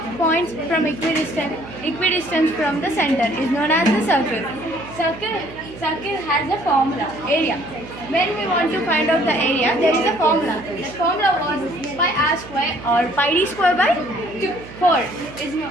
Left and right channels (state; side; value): noise; right; hum, 16 dB below the sound